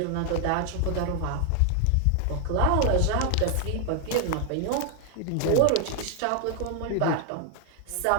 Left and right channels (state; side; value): different; both; correlation 0.00